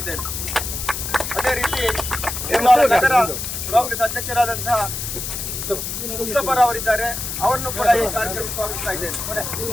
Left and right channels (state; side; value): noise; left; hiss, 5 dB below the sound